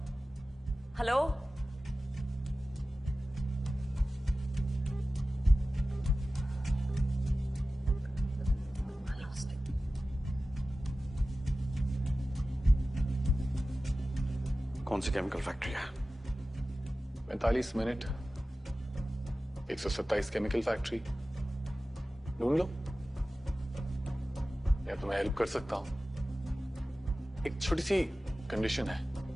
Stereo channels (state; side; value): normal; both; correlation 0.96